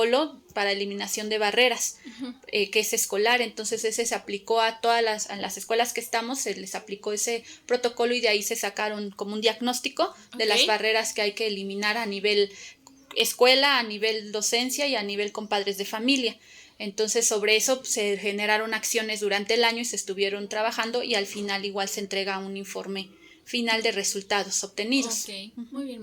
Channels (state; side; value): identical; both; correlation 1.00